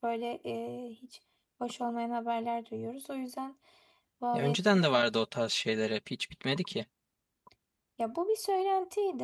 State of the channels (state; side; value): identical; both; correlation 1.00